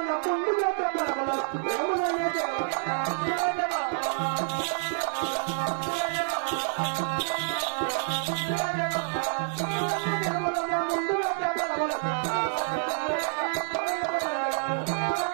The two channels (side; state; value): left; silent; digital silence